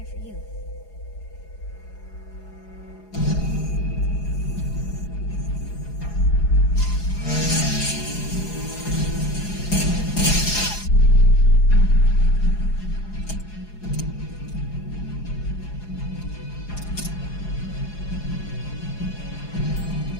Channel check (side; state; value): right; late; 4.8 ms